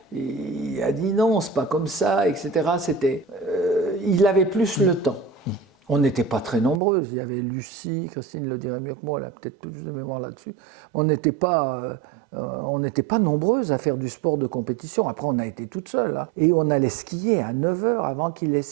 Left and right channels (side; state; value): left; drops out; at 6.8 s